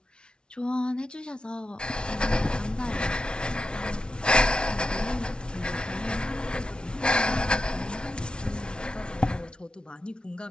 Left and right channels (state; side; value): late; right; 0.056 ms